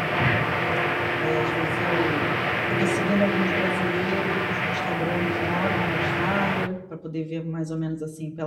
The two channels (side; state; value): both; identical; correlation 1.00